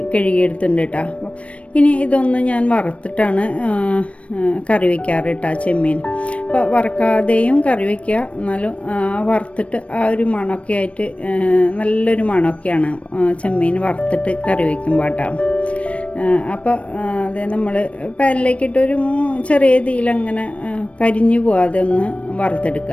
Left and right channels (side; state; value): right; late; 0.063 ms